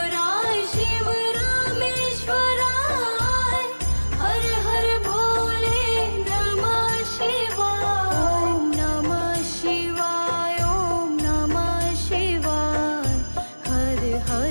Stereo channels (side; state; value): both; inverted; correlation -1.00